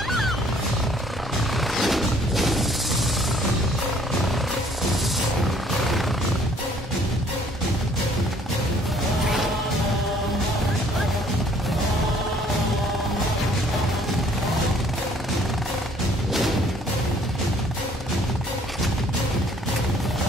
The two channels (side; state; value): both; normal; correlation 0.60